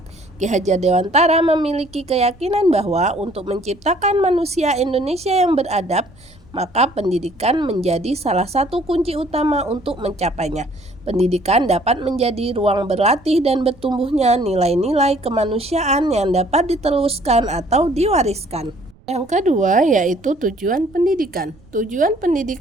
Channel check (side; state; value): right; noise; rumble, 27 dB below the sound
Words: Ki Hajar Dewantara memiliki keyakinan bahwa untuk menciptakan manusia Indonesia yang beradab, maka pendidikan menjadi salah satu kunci utama untuk mencapainya. Pendidikan dapat menjadi ruang berlatih dan bertumbuhnya nilai-nilai kemanusiaan yang dapat diteruskan atau diwariskan. Yang kedua yaitu tujuan pendidikan. Tujuan